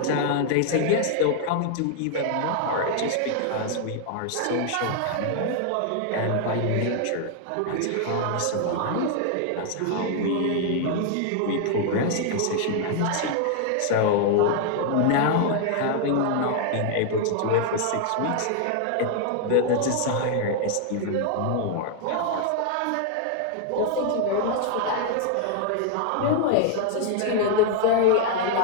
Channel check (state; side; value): different; both; correlation 0.00